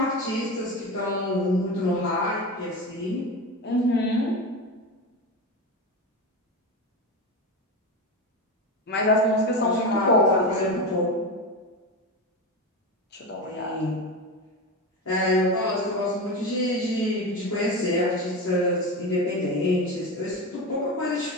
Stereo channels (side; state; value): both; normal; correlation 0.21